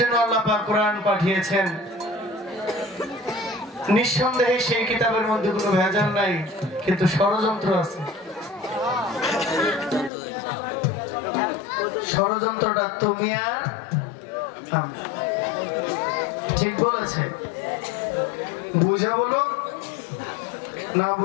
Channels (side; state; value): right; drops out; at 10.1 s